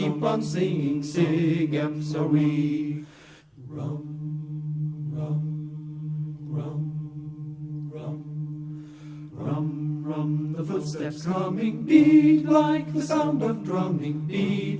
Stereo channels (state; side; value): identical; both; correlation 1.00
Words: on singing, Sig Eps are we. Rum, rum, rum, rum, rum, rum, the footsteps coming, beat like the sound of drumming, beat